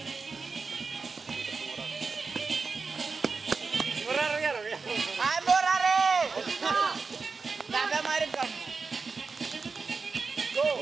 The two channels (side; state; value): left; quieter; 4.6 dB